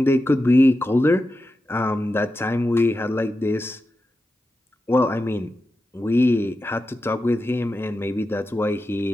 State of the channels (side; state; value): both; normal; correlation 0.90